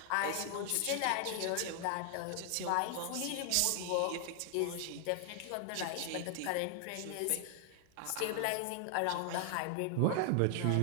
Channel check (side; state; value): both; different; correlation 0.00